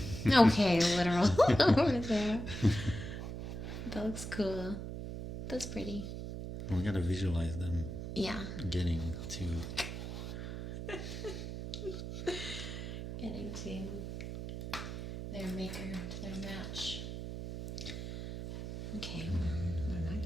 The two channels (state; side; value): noise; right; hum, 6 dB below the sound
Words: Okay, literal over there. That looks cool. That's pretty. We gotta visualize them Yeah. getting to. Getting to their maker, to their match. Okay. What am I